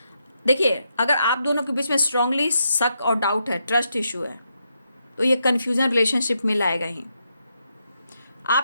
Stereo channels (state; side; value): inverted; both; correlation -0.81